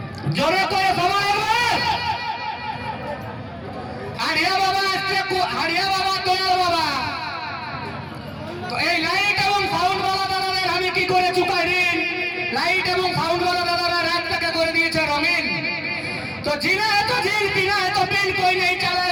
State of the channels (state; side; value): identical; both; correlation 1.00